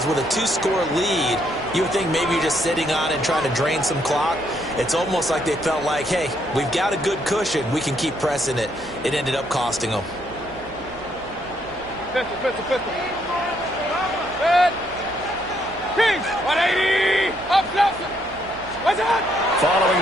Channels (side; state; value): right; noise; hum, 19 dB below the sound